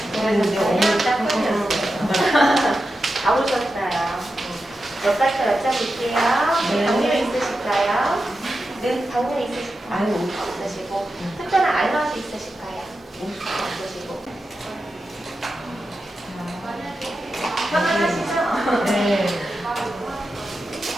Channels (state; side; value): normal; both; correlation 0.90